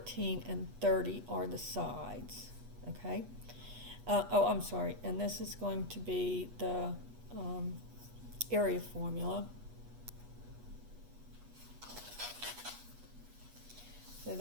and 30 are the sides, okay? I'm sorry, and this is going to be the area formula. So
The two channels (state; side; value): late; left; 8.2 ms